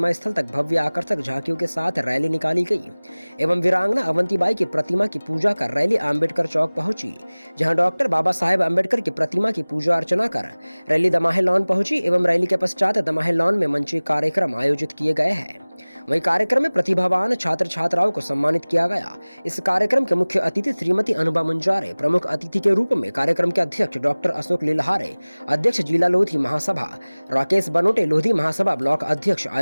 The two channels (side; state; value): both; inverted; correlation -1.00